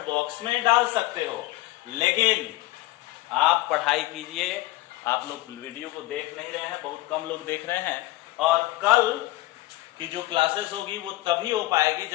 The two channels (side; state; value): right; quieter; 18.4 dB